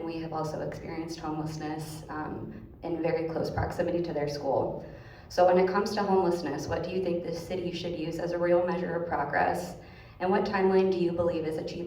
we have also experienced homelessness in very close proximity to their school. So when it comes to homelessness, what do you think the city should use as a real measure of progress? And what timeline do you believe is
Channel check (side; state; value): both; identical; correlation 1.00